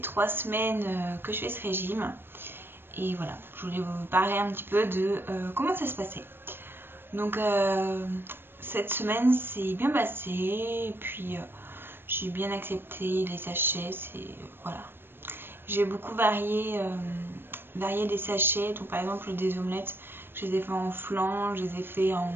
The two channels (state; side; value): late; left; 0.10 ms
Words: semaines que je fais ce régime. Et voilà, je voulais vous parler un petit peu de comment ça se passait. Donc cette semaine c'est bien passé. Et puis j'ai bien accepté les sachets. Voilà. J'ai beaucoup varié les sachets. Donc par exemple des omelettes, je les ai fait en flan, je les ai fait en